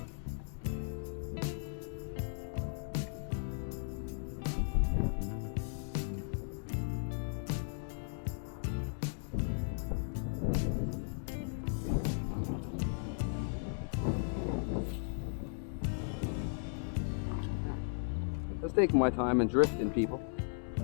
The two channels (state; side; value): silent; right; digital silence